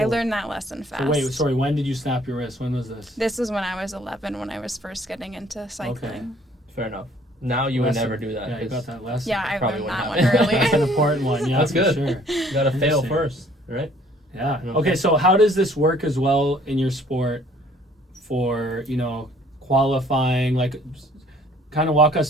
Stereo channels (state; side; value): normal; both; correlation 0.58